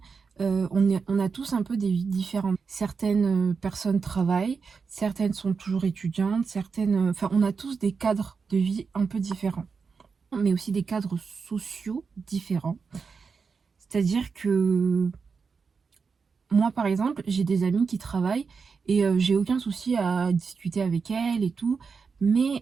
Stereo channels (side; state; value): left; quieter; 5.3 dB